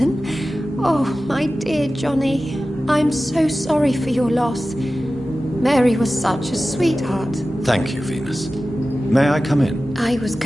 Oh, my dear Johnny. I'm so sorry for your loss. Mary was such a sweetheart. Thank you, Venus. May I come in? I was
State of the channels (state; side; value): normal; both; correlation 0.95